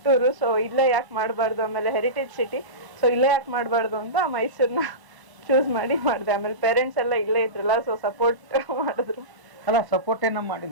ಸೊ ಇಲ್ಲೇ ಯಾಕೆ ಮಾಡಬಾರ್ದು, ಆಮೇಲೆ ಹೆರಿಟೇಜ್ ಸಿಟಿ, ಸೊ ಇಲ್ಲೇ ಯಾಕೆ ಮಾಡಬಾರ್ದು ಅಂತ ಮೈಸೂರ್ನ ಚೂಸ್ ಮಾಡಿ ಮಾಡಿದೆ. ಆಮೇಲೆ ಪೇರೆಂಟ್ಸ್ ಎಲ್ಲ ಇಲ್ಲೇ ಇದ್ರಲ್ಲ, ಸೊ ಸಪೋರ್ಟ್ ಮಾಡಿದ್ರು. ಅಲ್ಲ, ಸಪೋರ್ಟ್ ಏನ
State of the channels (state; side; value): late; left; 1.0 ms